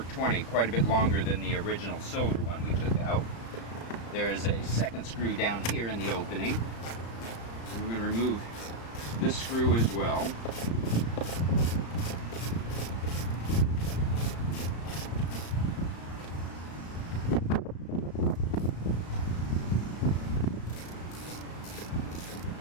20, quite a bit longer than the original silver one we took out. There is a second screw down here in the opening. And we're going to remove this screw as well.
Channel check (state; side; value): late; right; 35 ms